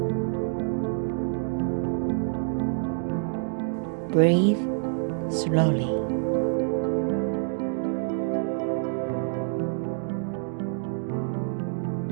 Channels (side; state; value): left; silent; digital silence